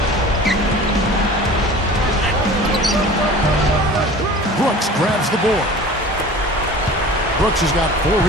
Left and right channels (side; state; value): both; normal; correlation 0.41